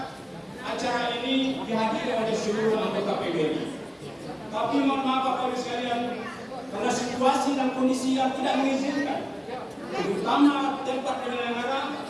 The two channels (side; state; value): both; identical; correlation 1.00